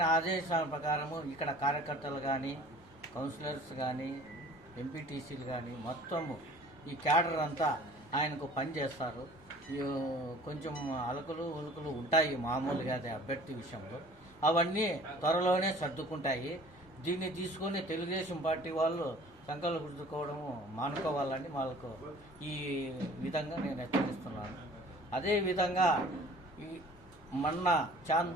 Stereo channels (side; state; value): both; normal; correlation 0.48